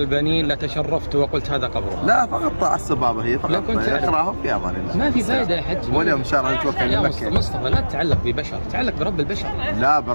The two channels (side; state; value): both; inverted; correlation -1.00